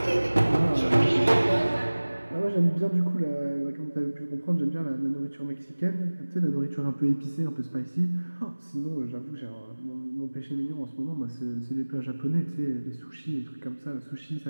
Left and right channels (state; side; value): inverted; both; correlation -1.00